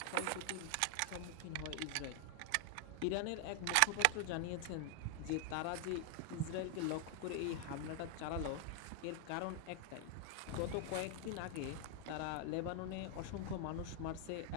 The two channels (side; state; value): both; different; correlation 0.00